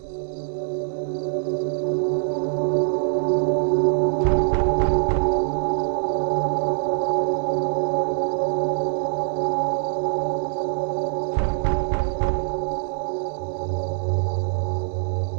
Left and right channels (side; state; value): left; silent; digital silence